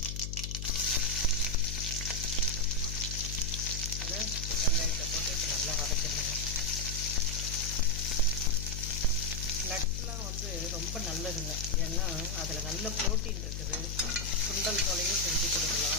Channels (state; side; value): noise; left; hum, 5 dB below the sound